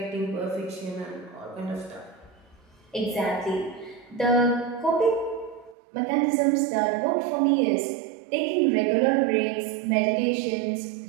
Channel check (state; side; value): drops out; left; at 5.8 s